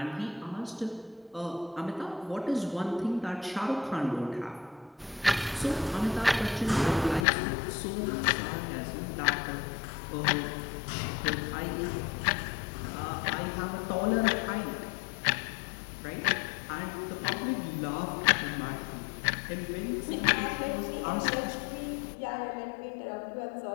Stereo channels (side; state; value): right; drops out; at 7.2 s